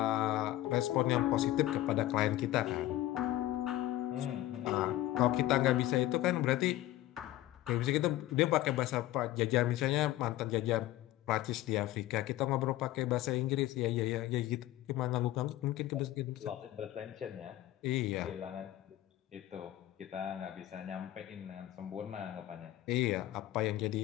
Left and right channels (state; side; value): quieter; right; 15.0 dB